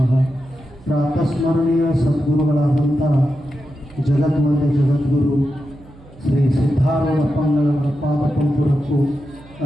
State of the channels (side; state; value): right; noise; hum, 23 dB below the sound